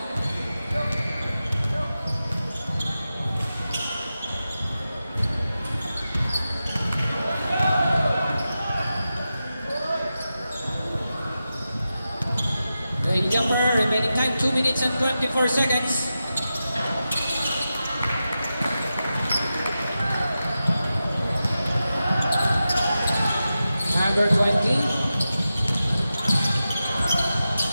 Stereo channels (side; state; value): both; inverted; correlation -0.92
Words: The jumper, remaining time 2 minutes and 24 seconds. Number 20.